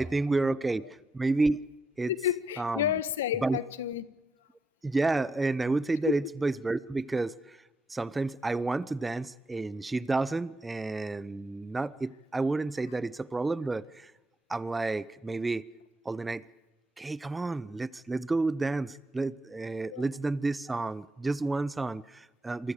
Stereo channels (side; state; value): both; normal; correlation 0.81